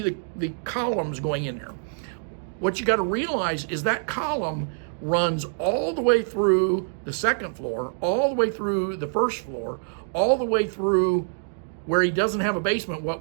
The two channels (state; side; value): silent; left; digital silence